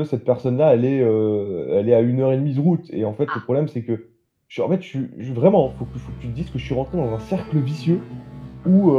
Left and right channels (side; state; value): both; identical; correlation 1.00